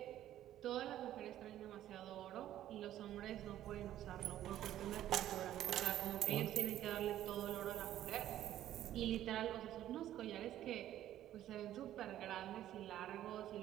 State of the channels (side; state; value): left; quieter; 12.5 dB